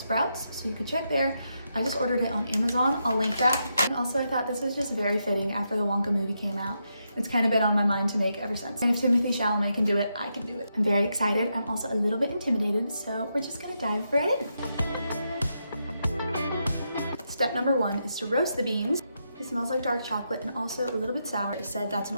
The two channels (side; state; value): both; inverted; correlation -0.83